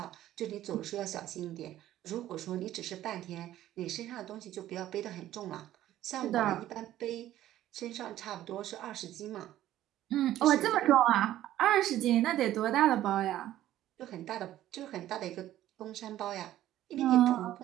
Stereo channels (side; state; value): left; quieter; 13.3 dB